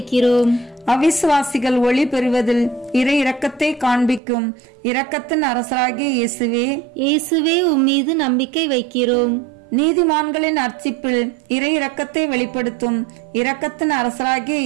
அவிசுவாசிகள் ஒளி பெறுவதில் இறை இரக்கத்தை காண்பிக்கும் இரக்கத்தின் அரசராகிய இயேசுவே, இயேசுவே உம்மீது நம்பிக்கை வைக்கிறோம். நீதிமான்களின் அர்ச்சிப்பில் இறை இரக்கத்தை வெளிப்படுத்தும் இரக்கத்தின் அரசராகிய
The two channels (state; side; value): drops out; left; at 4.2 s